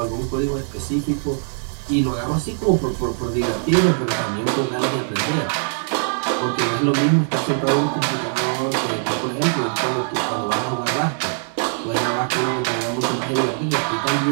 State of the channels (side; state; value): left; silent; digital silence